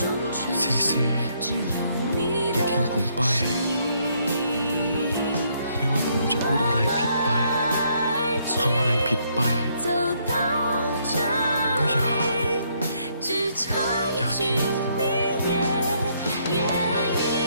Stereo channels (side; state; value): both; inverted; correlation -0.71